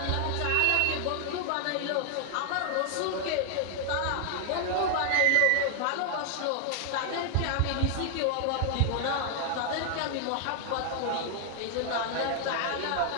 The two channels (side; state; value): both; different; correlation 0.00